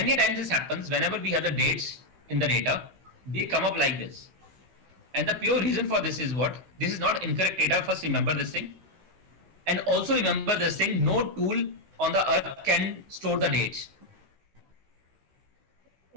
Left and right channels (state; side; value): late; left; 16 ms